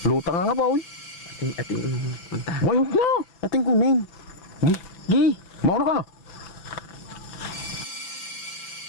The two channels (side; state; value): right; late; 5.9 ms